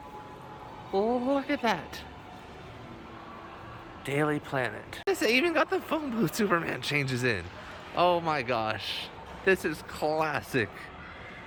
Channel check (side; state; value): both; identical; correlation 1.00